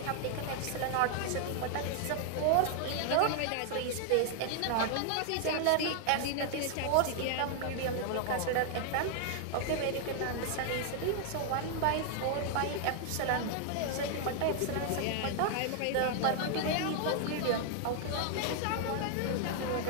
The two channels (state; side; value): different; both; correlation 0.00